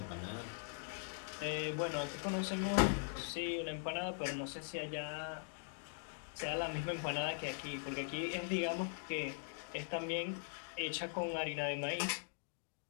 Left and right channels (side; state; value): right; silent; digital silence